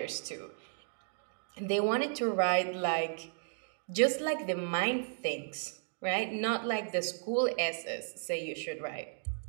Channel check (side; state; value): left; silent; digital silence